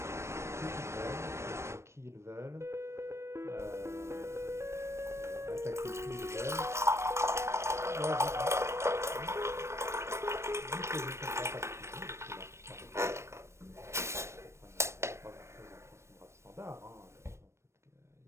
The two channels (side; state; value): left; late; 0.13 ms